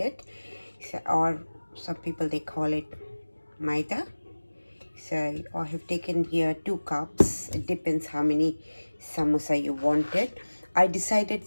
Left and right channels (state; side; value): inverted; both; correlation -1.00